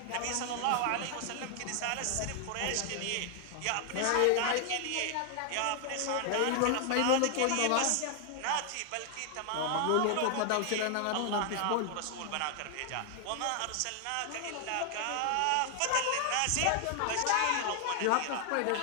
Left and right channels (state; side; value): different; both; correlation 0.00